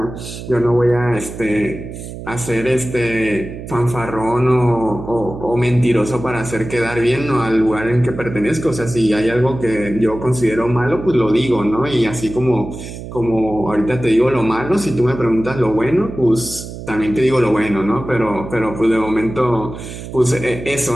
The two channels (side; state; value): right; noise; hum, 11 dB below the sound